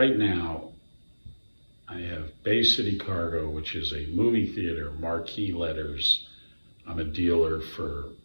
now, I have Bay City Cargo, which is a movie theater, marquee letters. I'm a dealer for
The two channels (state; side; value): inverted; both; correlation -1.00